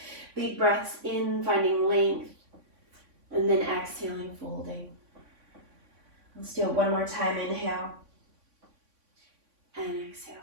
big breaths in, finding length. And then exhaling, folding. Let's do it one more time. Inhale and exhale.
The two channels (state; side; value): late; left; 3.5 ms